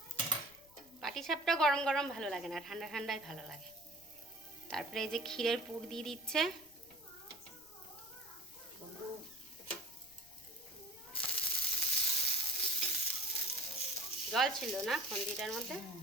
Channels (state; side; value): noise; left; rumble, 28 dB below the sound